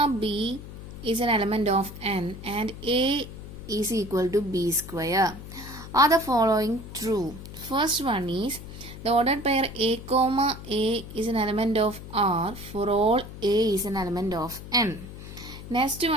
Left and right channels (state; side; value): noise; left; hum, 13 dB below the sound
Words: b is an element of n and a is equal to b square. Are the following true? First one is the ordered pair a comma a is an element of R for all a is an element of n. Next